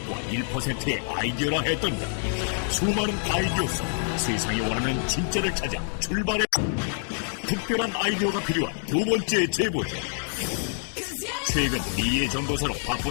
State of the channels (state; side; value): silent; right; 61 dB below the other